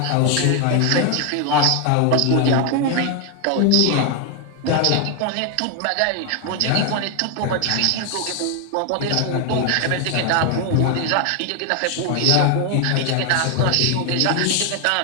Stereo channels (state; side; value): different; both; correlation 0.01